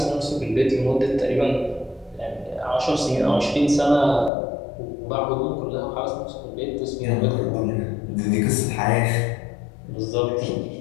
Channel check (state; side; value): drops out; right; at 4.3 s